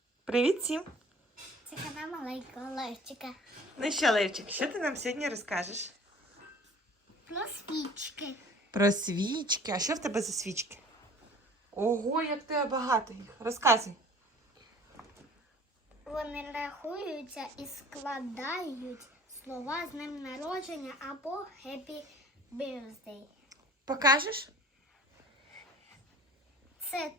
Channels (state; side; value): normal; both; correlation 0.48